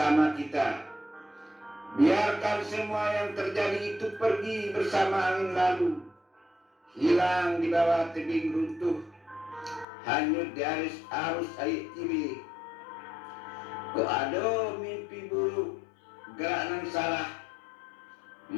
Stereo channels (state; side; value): drops out; right; at 9.9 s